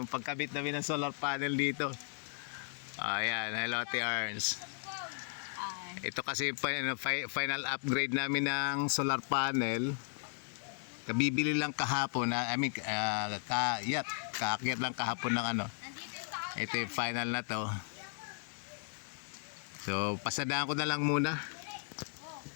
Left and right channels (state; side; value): silent; right; 54 dB below the other